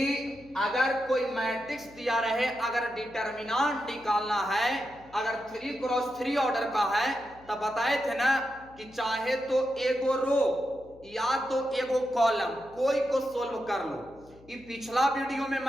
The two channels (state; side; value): noise; left; hum, 24 dB below the sound